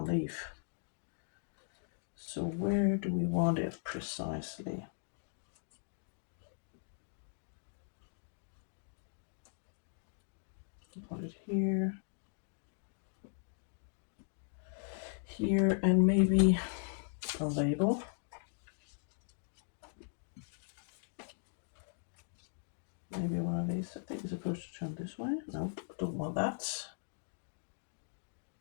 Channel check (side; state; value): right; silent; digital silence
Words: leaf. So where do we want it precisely? Put it here. Here, and maybe a label. Maybe one of these. I think it's supposed to turn this way. No, don't want that.